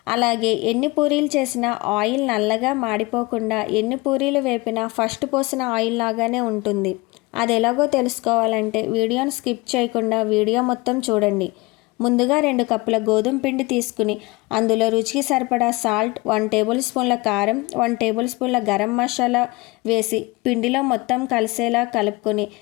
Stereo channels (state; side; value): quieter; right; 23.5 dB